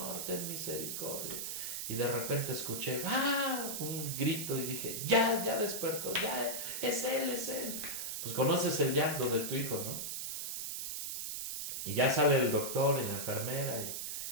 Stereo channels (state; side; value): noise; right; hiss, 4 dB below the sound